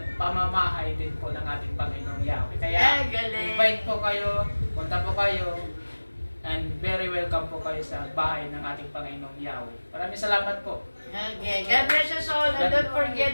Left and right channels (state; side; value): inverted; both; correlation -1.00